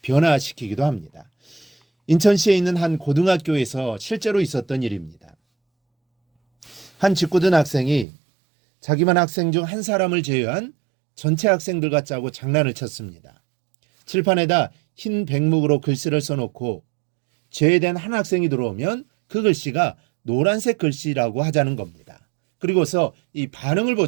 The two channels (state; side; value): drops out; left; at 8.1 s